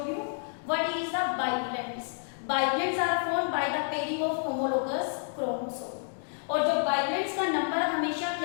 view. What is the bivalents? Bivalents are formed by the pairing of homologous chromosome. और जो बाइप्लैंट्स का नंबर हमेशा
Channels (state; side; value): silent; right; 58 dB below the other